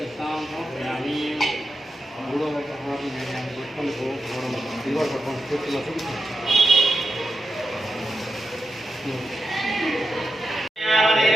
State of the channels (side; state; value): both; normal; correlation 0.88